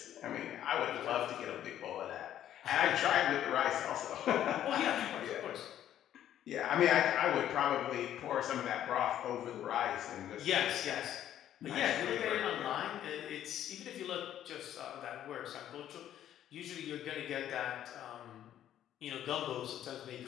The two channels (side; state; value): right; quieter; 11.3 dB